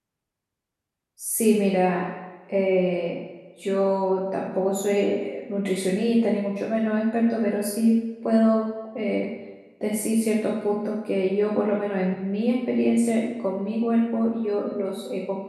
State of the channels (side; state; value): both; identical; correlation 1.00